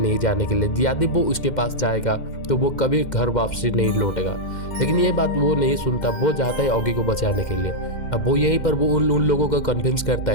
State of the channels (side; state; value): right; late; 2.1 ms